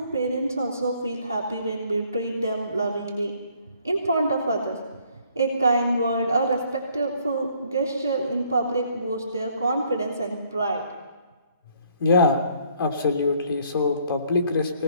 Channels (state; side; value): inverted; both; correlation -0.64